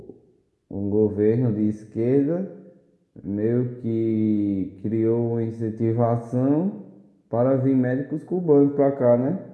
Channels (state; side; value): identical; both; correlation 1.00